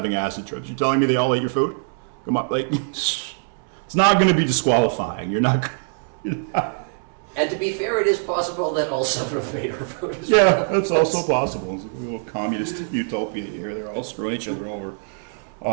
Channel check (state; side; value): silent; left; digital silence